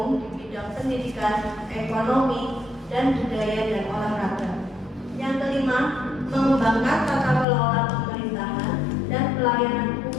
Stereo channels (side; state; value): right; drops out; at 7.5 s